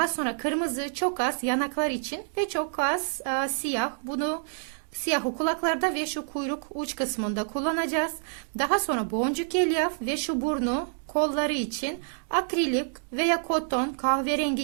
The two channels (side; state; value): left; silent; digital silence